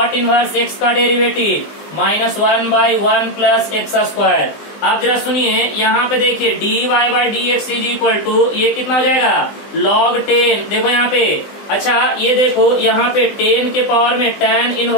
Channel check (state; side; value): late; right; 20 ms